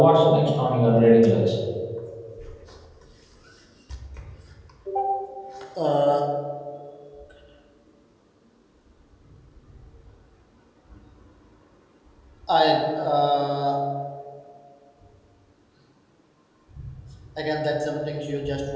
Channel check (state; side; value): identical; both; correlation 1.00